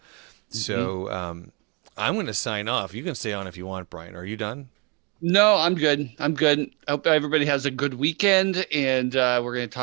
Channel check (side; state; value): left; quieter; 31.5 dB